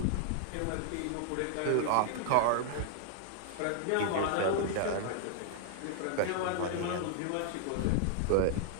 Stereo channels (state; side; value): different; both; correlation 0.00